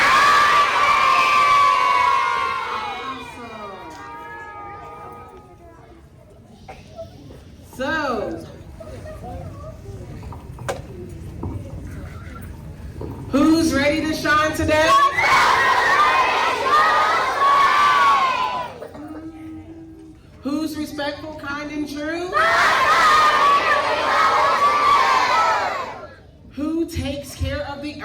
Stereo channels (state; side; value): identical; both; correlation 1.00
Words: Awesome. So, who's ready to shine today? Who's respectful, kind, and true? Who takes care of the